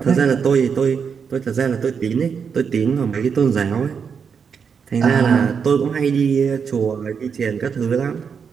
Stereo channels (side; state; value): left; quieter; 6.4 dB